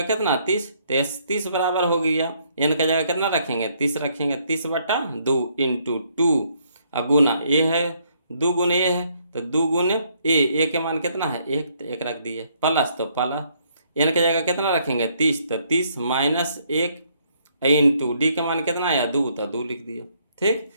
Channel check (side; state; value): both; inverted; correlation -0.69